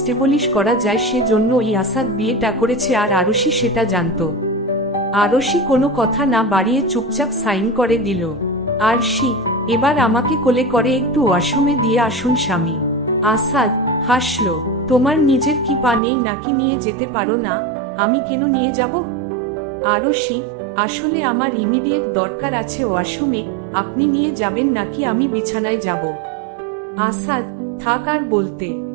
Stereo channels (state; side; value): drops out; left; at 16.0 s